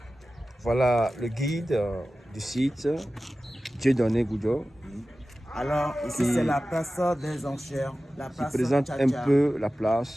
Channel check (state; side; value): normal; both; correlation 0.95